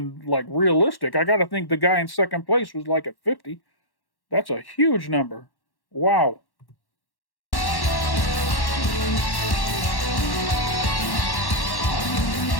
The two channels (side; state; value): right; late; 1.1 ms